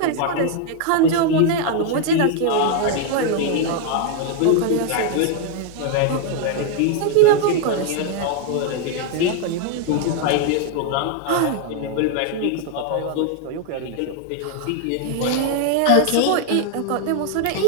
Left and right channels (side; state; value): both; different; correlation 0.00